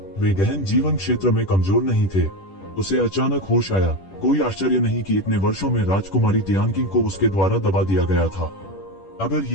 वे गहन जीवन क्षेत्र में कमजोर नहीं थे। उसे अचानक होश आया। कोई आश्चर्य नहीं कि इतने वर्षों में राजकुमारी तियानकिंग को उसके द्वारा दबा दिया गया था। अगर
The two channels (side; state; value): right; late; 10 ms